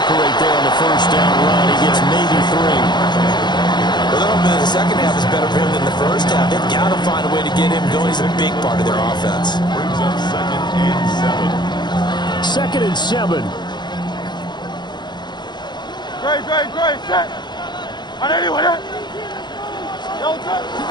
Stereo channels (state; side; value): late; right; 0.21 ms